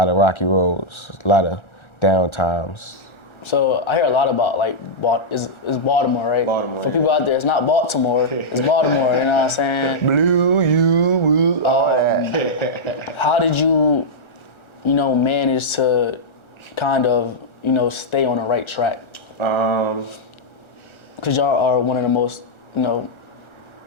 of rocky roads, a lot of down times. So I hear a lot about like is Baltimore, right? Baltimore. For people out there, it's not Baltimore, it's Baltimore. You know what I'm saying? Blue, you, woo, all that. How did you manage to kind of stay on the right track? Because y'all are one of the most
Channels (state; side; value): late; right; 1.4 ms